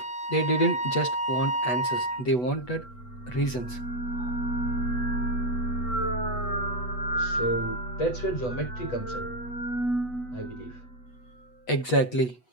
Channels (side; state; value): right; late; 8.1 ms